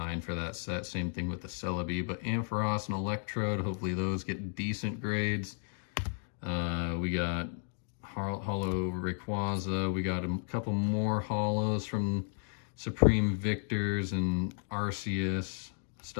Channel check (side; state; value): right; silent; 55 dB below the other